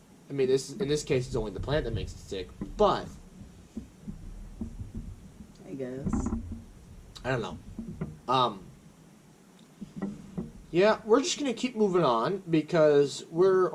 I mean, in this case, it's only the plant that makes it sick. But I guess. I don't know. Yeah, we're just going to keep moving on because we're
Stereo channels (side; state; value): both; identical; correlation 1.00